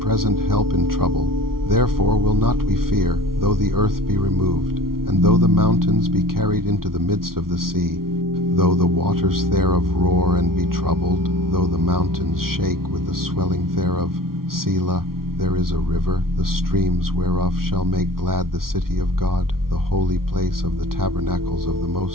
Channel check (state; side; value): late; left; 0.93 ms